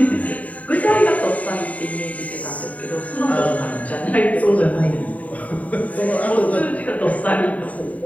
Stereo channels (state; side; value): late; right; 0.070 ms